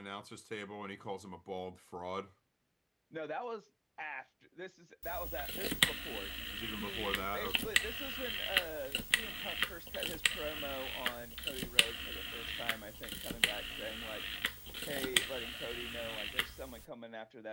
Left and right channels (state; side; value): identical; both; correlation 1.00